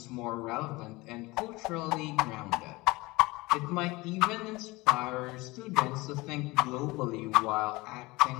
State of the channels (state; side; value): quieter; right; 22.2 dB